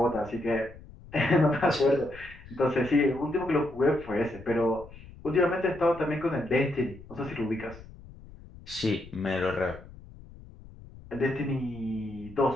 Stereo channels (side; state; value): left; noise; rumble, 18 dB below the sound